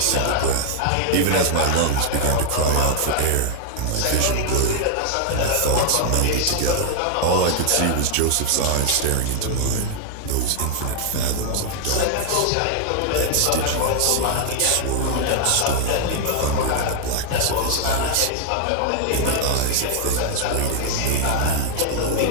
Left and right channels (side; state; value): both; different; correlation 0.00